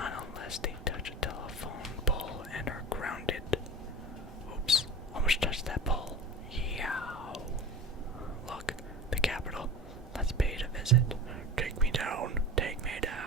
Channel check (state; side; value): normal; both; correlation 0.33